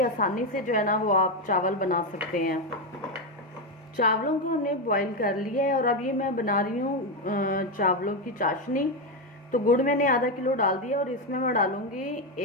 से जो है ना वो आप चावल बना सकते हैं। चावलों को हमने बॉईल कर लिया है, और अब ये मैं बना रही हूँ चावलों की चाशनी। तो गुड़ मैंने आधा किलो डाल दिया, और इसमें मैं डालूंगी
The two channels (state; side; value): normal; both; correlation 0.08